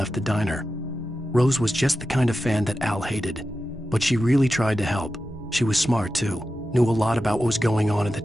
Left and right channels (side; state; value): both; normal; correlation 0.92